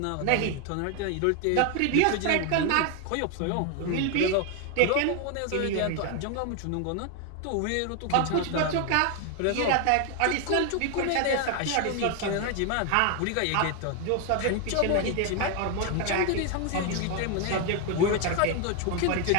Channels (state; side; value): different; both; correlation 0.01